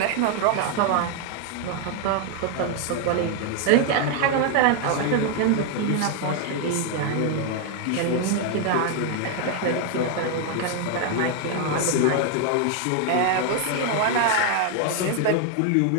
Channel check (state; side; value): different; both; correlation 0.01